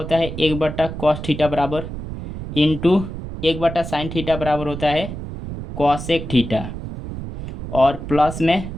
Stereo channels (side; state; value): right; noise; rumble, 8 dB below the sound